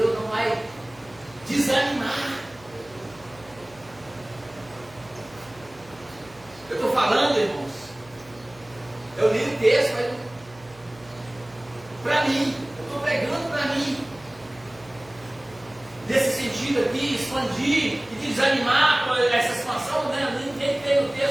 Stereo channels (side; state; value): right; noise; hum, 24 dB below the sound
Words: não vai desanimar. Eu estou falando, irmãos, eu li o texto, mas para mim, eu estou pregando para mim. Nesse sentido aqui, expandir e desanimar com essa expansão, né? Ninguém tem no